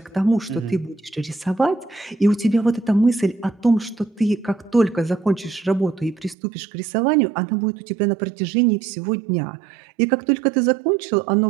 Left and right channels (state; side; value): drops out; left; at 6.4 s